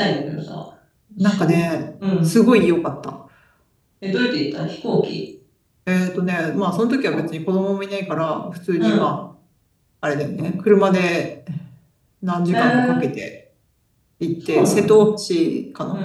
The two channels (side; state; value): both; identical; correlation 1.00